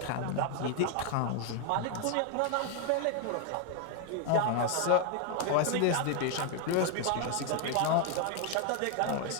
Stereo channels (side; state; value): both; different; correlation 0.01